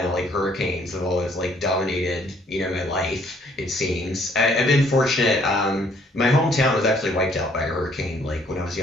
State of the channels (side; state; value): both; normal; correlation 0.63